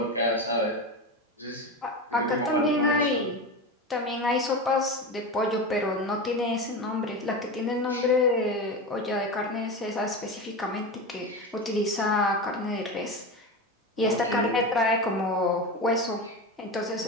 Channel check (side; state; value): both; normal; correlation 0.22